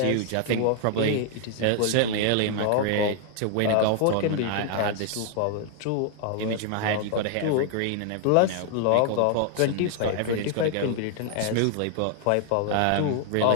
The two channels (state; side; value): different; both; correlation 0.00